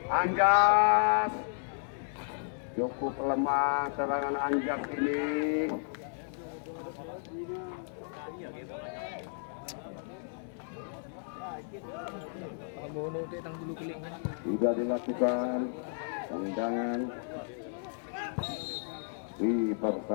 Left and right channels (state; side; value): silent; right; 56 dB below the other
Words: Anjas, cukup lemah serangan Anjas ini. Sudah dilakukan tendangan,